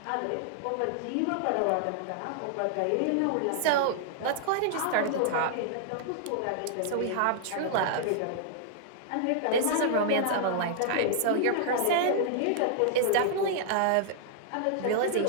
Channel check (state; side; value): different; both; correlation -0.01